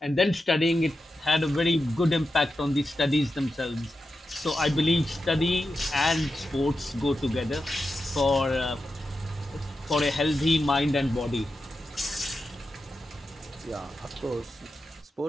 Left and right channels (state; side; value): normal; both; correlation 0.90